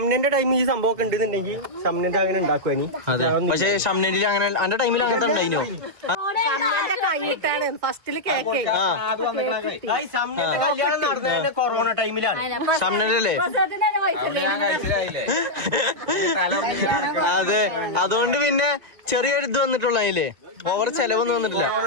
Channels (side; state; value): left; late; 1.9 ms